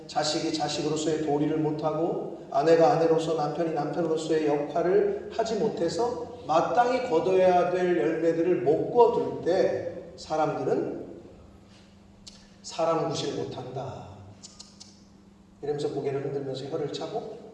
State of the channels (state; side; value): identical; both; correlation 1.00